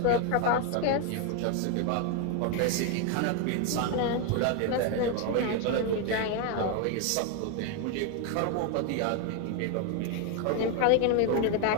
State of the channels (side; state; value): both; different; correlation 0.01